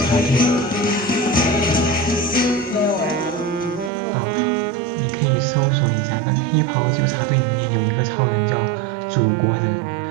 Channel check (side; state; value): left; drops out; at 3.9 s